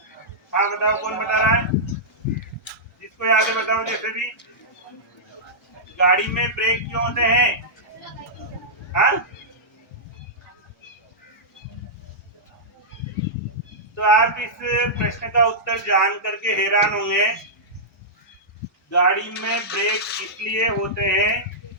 हाँ बताओ, कौन बता रहा है? जिसको याद है बताओ। जैसे भी गाड़ी में ब्रेक क्यों होते हैं? हाँ, तो आप इस प्रश्न का उत्तर जान करके हैरान होंगे। गाड़ी में ब्रेक इसलिए होते हैं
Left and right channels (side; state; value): both; normal; correlation -0.13